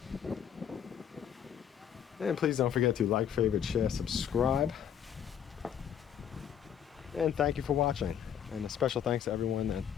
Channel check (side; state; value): right; quieter; 9.0 dB